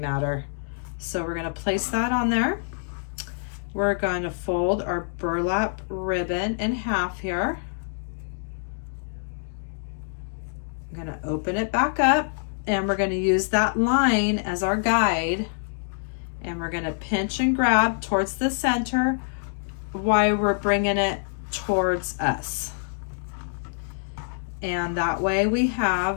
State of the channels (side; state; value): right; silent; digital silence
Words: So we're going to place that on there. We're going to fold our burlap ribbon in half here. I'm going to open it back up, and we're going to use that line as our guide. And we're going to pinch and grab towards the center while we're bringing it towards us. And that way we